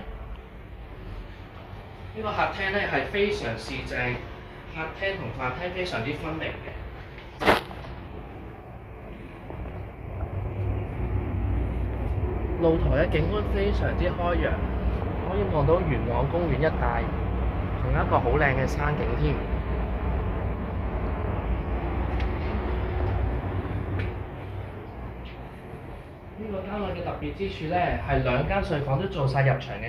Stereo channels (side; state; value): both; identical; correlation 1.00